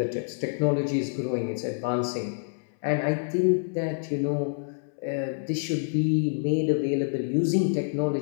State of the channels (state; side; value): silent; right; 60 dB below the other